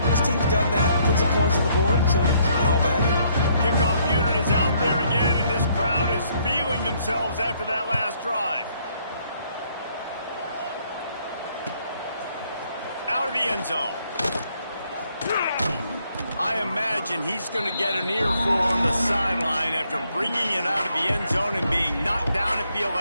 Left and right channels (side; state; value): both; inverted; correlation -0.69